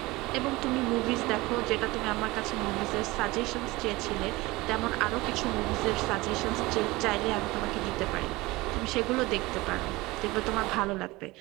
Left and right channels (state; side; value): quieter; left; 21.1 dB